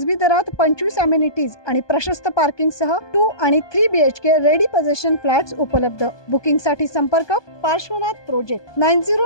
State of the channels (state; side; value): late; right; 1.2 ms